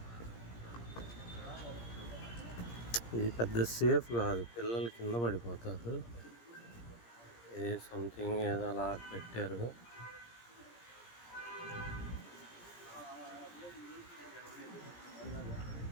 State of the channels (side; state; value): right; late; 17 ms